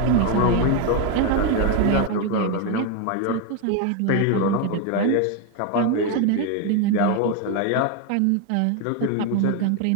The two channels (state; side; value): different; both; correlation 0.01